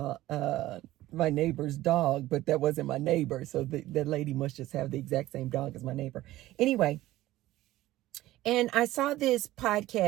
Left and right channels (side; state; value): left; quieter; 15.9 dB